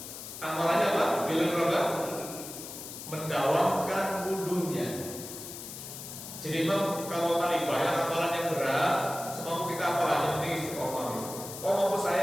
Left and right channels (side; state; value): left; noise; hiss, 11 dB below the sound